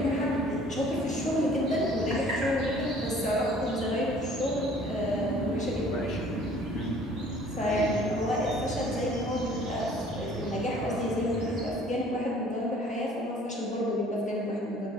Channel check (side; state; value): both; normal; correlation 0.53